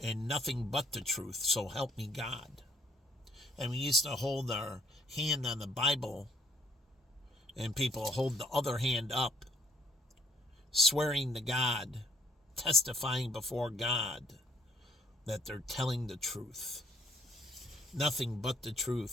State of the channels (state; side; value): normal; both; correlation 0.63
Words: and nothing but the truth, so help me God. And we used to hold our hand on the Bible, and people hold the other hand up, swearing to God, testifying before God that they're telling the truth. Nothing but the